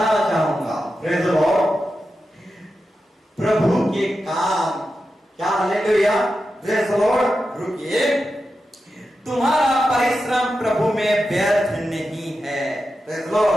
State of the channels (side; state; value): both; normal; correlation 0.90